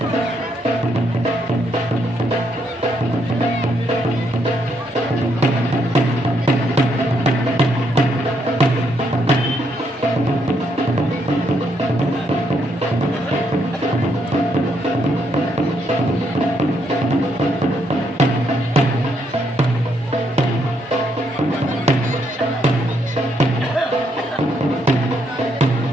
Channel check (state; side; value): normal; both; correlation 0.75